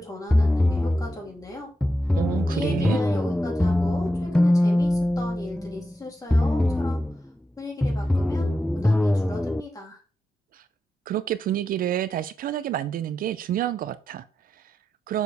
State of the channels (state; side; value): normal; both; correlation 0.87